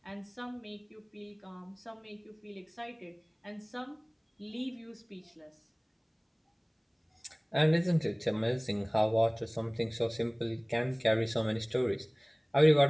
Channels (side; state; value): both; identical; correlation 1.00